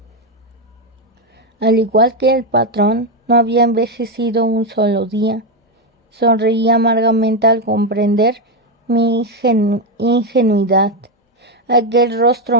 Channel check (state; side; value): normal; both; correlation 0.07